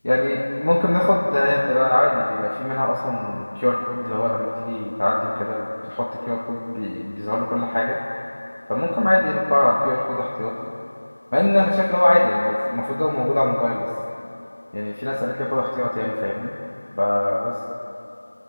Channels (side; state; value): both; inverted; correlation -1.00